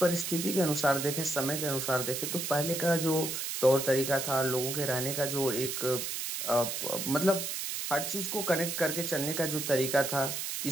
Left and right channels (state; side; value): noise; right; hiss, 3 dB below the sound